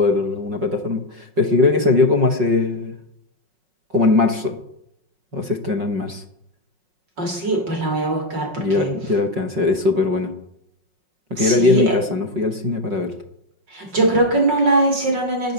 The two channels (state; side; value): late; left; 5.4 ms